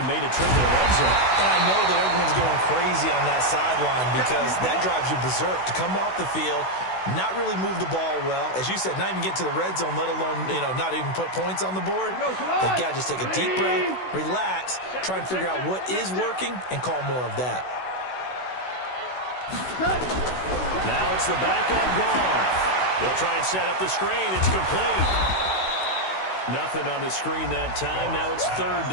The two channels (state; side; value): late; right; 16 ms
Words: made a trip to the red zone. And I know that everyone's going crazy on that sideline because that drives you berserk to come off the field, not really move the ball well. As you said, not even get to the red zone, let alone, not even put points on the board. They've got to just take a deep breath, relax, try and figure out what is working, and call more of that. Now it's the backup Goff. They'll try and set up the screen. It's complete. Nothing on the screen that time. Now it's 3rd